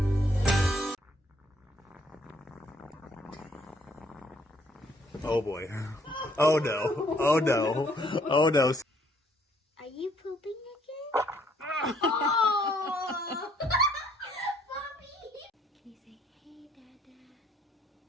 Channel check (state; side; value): normal; both; correlation 0.65